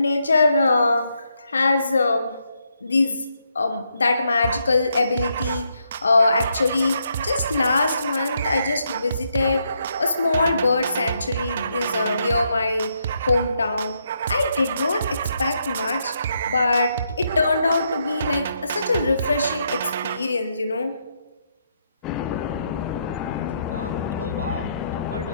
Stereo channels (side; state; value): both; inverted; correlation -0.77